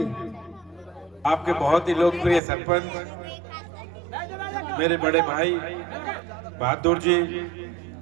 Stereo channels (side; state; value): left; drops out; at 2.4 s